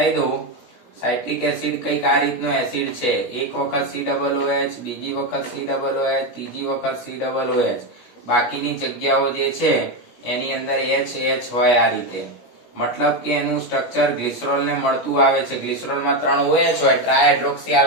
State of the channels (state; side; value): late; right; 17 ms